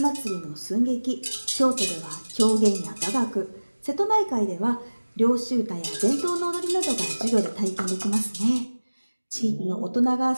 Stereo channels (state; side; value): inverted; both; correlation -1.00